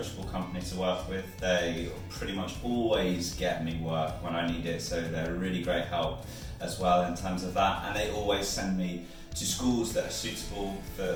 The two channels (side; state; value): both; identical; correlation 1.00